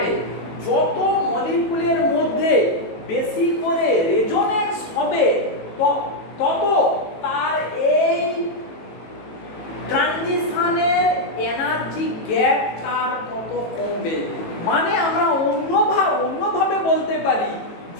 যত মলিকুলের মধ্যে বেশি করে রেজোনেন্স হবে তত তার এই ট্রানজিশনের এনার্জি গ্যাপ তার তত কমবে। মানে আমরা অন্যভাবে বলতে পারি,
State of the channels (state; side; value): late; right; 18 ms